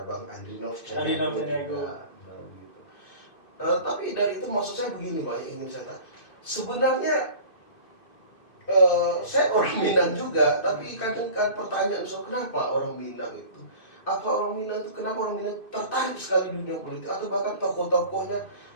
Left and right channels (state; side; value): late; right; 2.6 ms